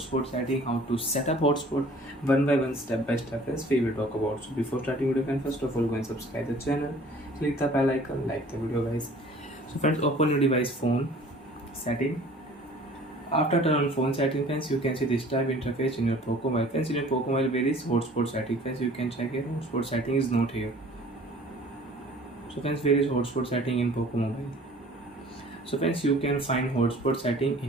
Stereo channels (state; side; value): normal; both; correlation 0.50